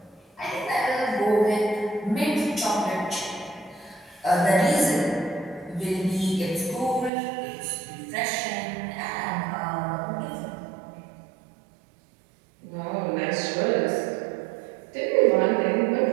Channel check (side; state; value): left; drops out; at 7.1 s